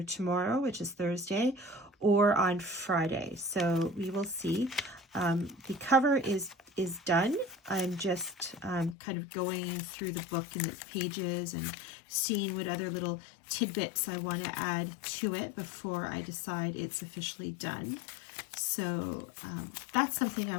tomorrow, which is Thursday, or on Friday. So we will see. The cover is done. I'm just kind of going through the book and the pages and seeing what other little tidbits I want to add to it before I decide it's officially done. So that's something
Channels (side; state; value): right; drops out; at 9.0 s